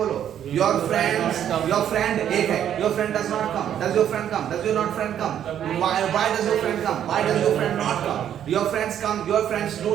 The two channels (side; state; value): left; quieter; 10.0 dB